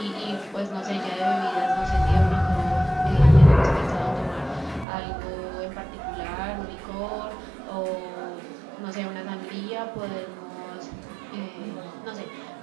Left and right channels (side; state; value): left; drops out; at 4.9 s